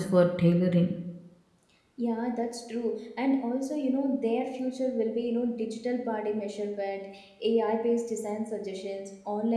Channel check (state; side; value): identical; both; correlation 1.00